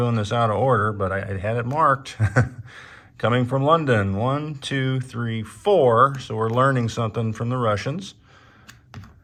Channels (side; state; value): both; identical; correlation 1.00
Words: this out of order, but I had it marked. Coming from London, 1, 2, 3, 4. So we're learning something from the Russians.